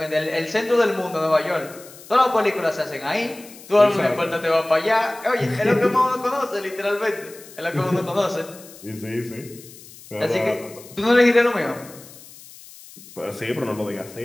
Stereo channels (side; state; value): left; noise; hiss, 19 dB below the sound